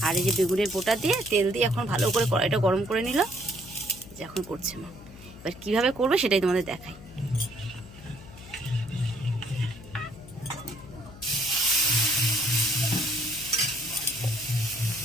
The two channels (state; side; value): noise; left; hum, 18 dB below the sound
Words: আর এই যে বেগুনের বোটা দিয়ে তেল দিয়ে এখন ভালো করে কড়াইটা গরম করে নিল। যে এখন করছে মা, এবার কীভাবে করবে সেটাই তোমাদের দেখাই।